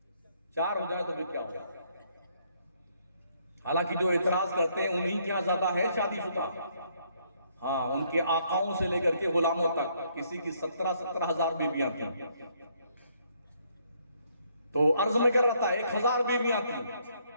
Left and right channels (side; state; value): both; inverted; correlation -0.69